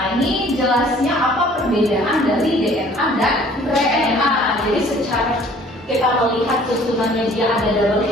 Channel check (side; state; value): both; normal; correlation 0.54